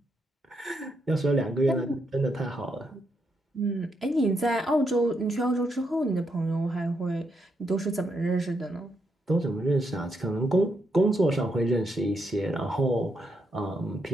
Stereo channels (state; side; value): normal; both; correlation 0.79